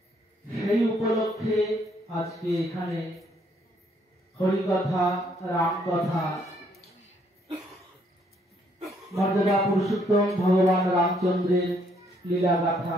উপলক্ষে আজকে এখানে হরিকথা, রামকথা, মর্যাদা পুরুষোত্তম ভগবান রামচন্দ্রের লীলা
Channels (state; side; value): normal; both; correlation 0.69